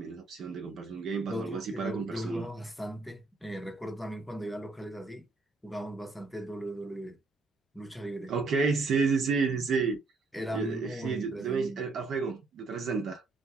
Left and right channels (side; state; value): left; quieter; 3.7 dB